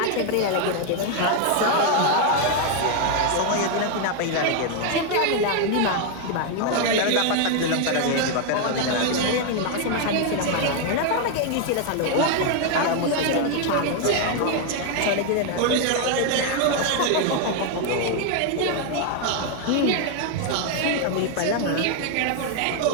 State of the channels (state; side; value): different; both; correlation 0.01